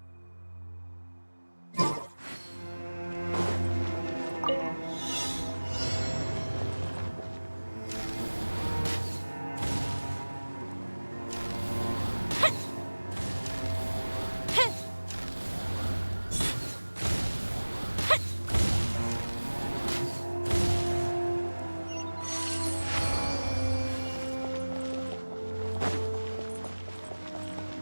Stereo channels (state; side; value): inverted; both; correlation -1.00